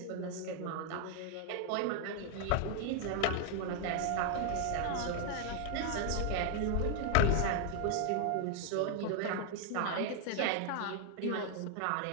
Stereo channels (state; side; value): different; both; correlation 0.00